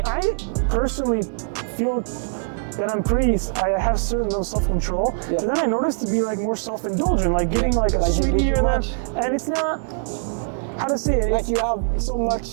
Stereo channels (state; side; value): silent; left; digital silence